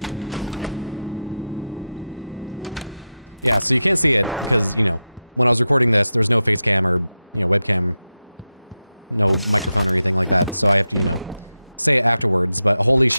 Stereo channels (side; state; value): both; inverted; correlation -0.90